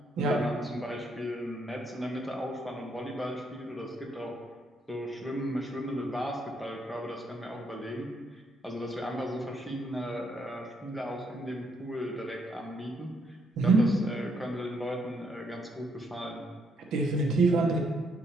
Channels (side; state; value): both; normal; correlation 0.73